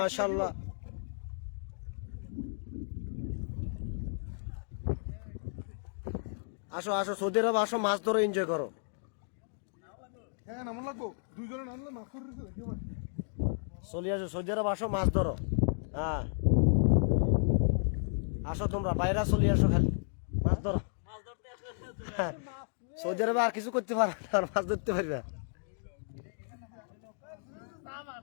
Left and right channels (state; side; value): silent; right; digital silence